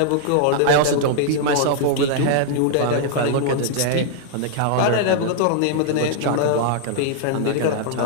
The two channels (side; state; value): both; different; correlation -0.01